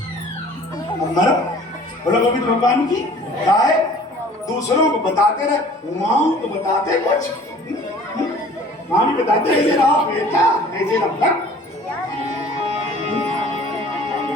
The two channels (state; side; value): normal; both; correlation 0.50